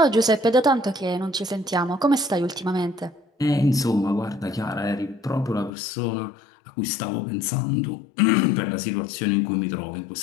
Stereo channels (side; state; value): right; drops out; at 5.7 s